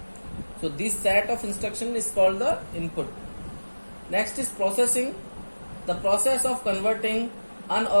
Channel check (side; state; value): both; inverted; correlation -1.00